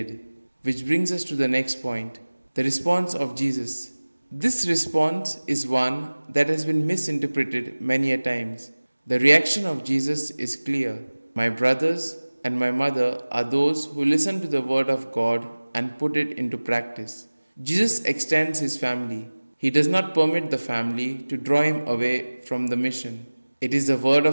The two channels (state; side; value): inverted; both; correlation -1.00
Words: Which brings us to the next point, the response of Jesus. This response is one that has been misinterpreted many a times. The reaction of Jesus is clear. My brothers and my mother are those who listen to the word of God and put it into practice. Jesus extends his family. He does not permit the family to draw him away from the mission. It is the word